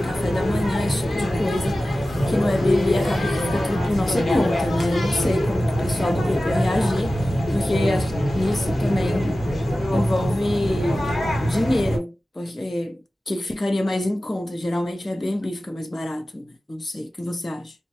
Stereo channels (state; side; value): normal; both; correlation 0.95